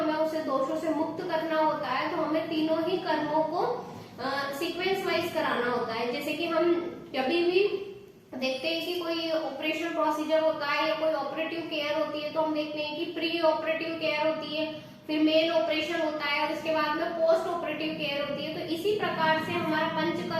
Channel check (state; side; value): identical; both; correlation 1.00